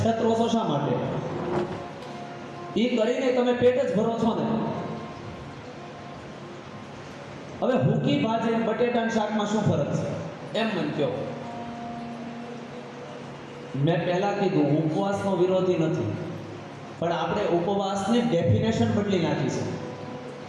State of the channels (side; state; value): both; identical; correlation 1.00